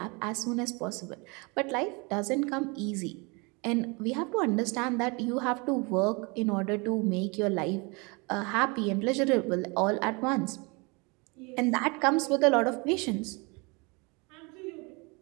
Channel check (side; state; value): left; quieter; 29.0 dB